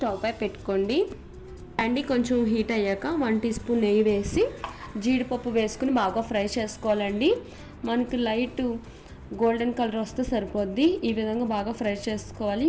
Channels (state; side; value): identical; both; correlation 1.00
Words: పై పెట్టుకోండి. బ్యాండీ కొంచెం హీట్ అయ్యాక 1 టీ స్పూన్ నెయ్యి వేసి జీడిపప్పు వేసుకుని బాగా ఫ్రై చేసుకోవాలండి. మనకి లైట్ గోల్డెన్ కలర్ వస్తే సరిపోద్ది. ఈ విధంగా బాగా ఫ్రై చేసుకోవాలి.